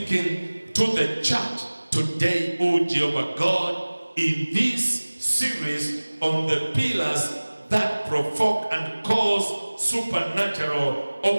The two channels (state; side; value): inverted; both; correlation -1.00